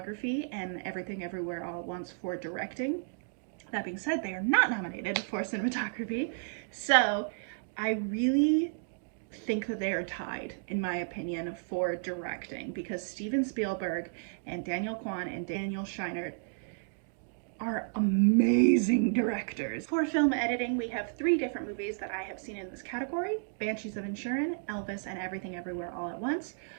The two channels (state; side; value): silent; left; digital silence